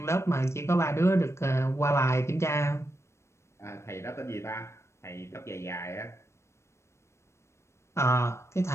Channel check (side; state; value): right; late; 0.13 ms